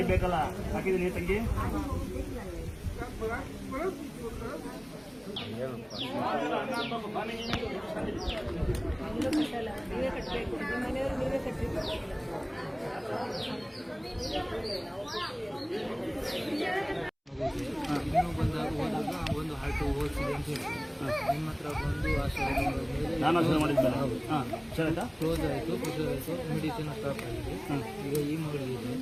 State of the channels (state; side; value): identical; both; correlation 1.00